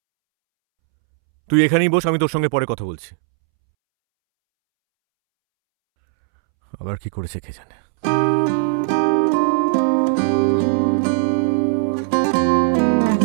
তুই এখানেই বস, আমি তোর সঙ্গে পরে কথা বলছি। আবার কি করেছে কে জানে।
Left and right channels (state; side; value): silent; left; 67 dB below the other